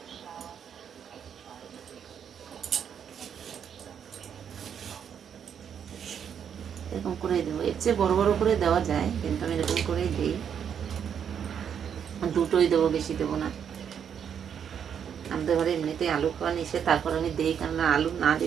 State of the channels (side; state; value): left; quieter; 8.1 dB